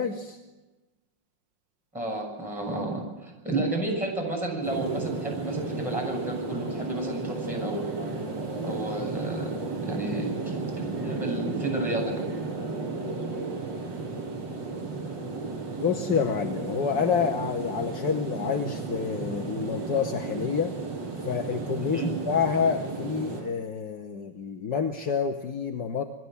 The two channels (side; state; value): left; late; 5.5 ms